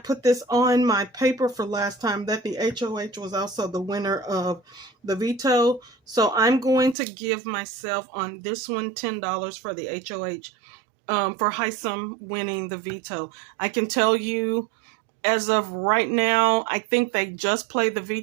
put this on my paper for last time that the HOH was also the winner of the veto. So I'm going to give myself on this one $10 for the HOH, for Hisam winning the veto. I can tell you, as of right now, I think they just played the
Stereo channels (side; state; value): left; drops out; at 7.0 s